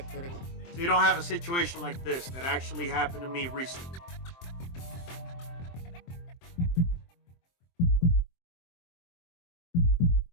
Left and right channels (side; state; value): right; late; 23 ms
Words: So you don't have a situation like this that actually happened to me recently.